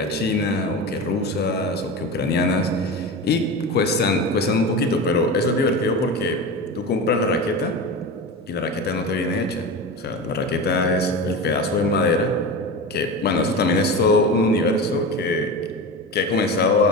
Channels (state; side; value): normal; both; correlation 0.26